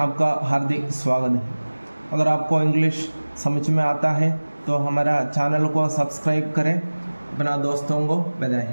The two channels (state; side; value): inverted; both; correlation -1.00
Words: हार्दिक स्वागत है। अगर आपको इंग्लिश समझ में आता है तो हमारा चैनल को सब्सक्राइब करें, अपना दोस्तों को